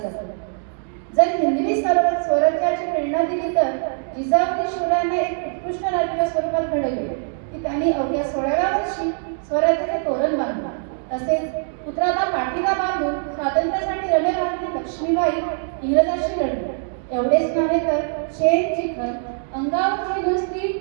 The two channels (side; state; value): left; silent; digital silence